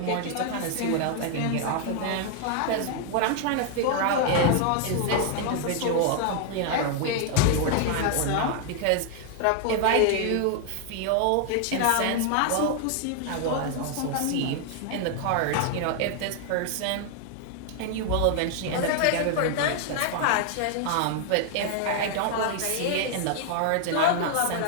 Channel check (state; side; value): different; both; correlation 0.00